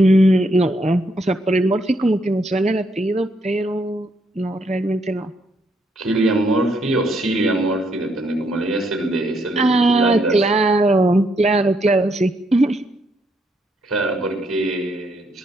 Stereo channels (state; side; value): normal; both; correlation 0.75